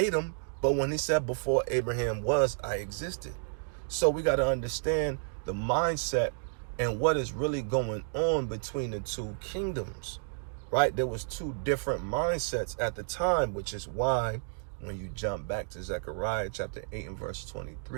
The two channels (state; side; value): silent; left; digital silence